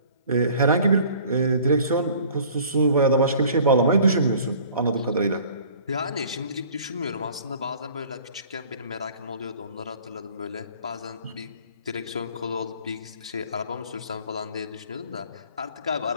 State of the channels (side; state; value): both; inverted; correlation -0.50